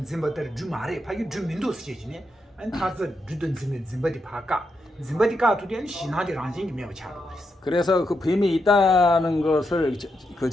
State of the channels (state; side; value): normal; both; correlation 0.83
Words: zembe다를 주 말해. 파기 주 민도 시제지네. 아니 타자 주든 zembe디 파까 zembe디 까투디는 신하디 란징이 매우 잘 그랬어. 그래서 그 뱀이 있다는 것을 그